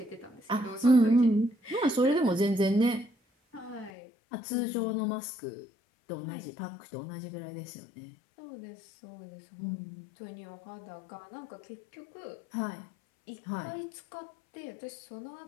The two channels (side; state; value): right; drops out; at 3.9 s